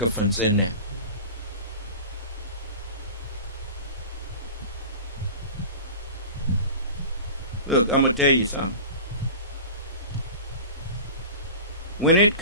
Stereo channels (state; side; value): inverted; both; correlation -0.34